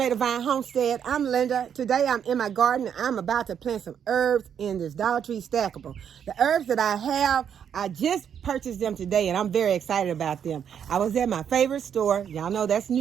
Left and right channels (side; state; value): left; quieter; 8.3 dB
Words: Vine Homestead. I'm Linda. Today I'm in my garden and I'm about to plant some herbs in this Dollar Tree stackable. The herbs that I have, I just purchased them today and I'm very excited about them. I was at my favorite store, y'all know that's